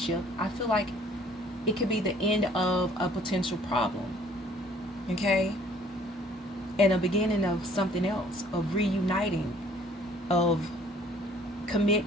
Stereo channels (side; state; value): both; normal; correlation 0.57